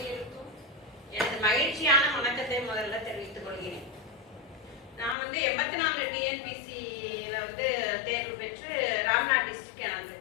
எனது மகிழ்ச்சியான வணக்கத்தை முதல்ல தெரிவித்துக் கொள்கிறேன். நான் 84 டிஎன்பிசியில தேர்வு பெற்று ராம்நாத் டிஸ்ட்ரிக்ட் எனக்கு.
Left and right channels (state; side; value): drops out; right; at 5.2 s